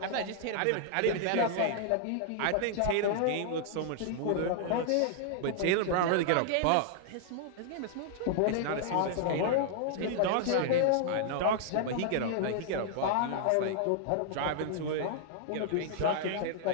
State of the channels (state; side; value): different; both; correlation -0.01